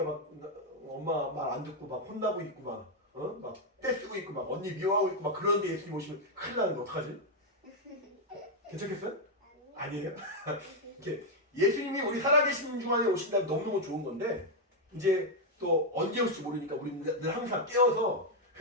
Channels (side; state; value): both; normal; correlation 0.00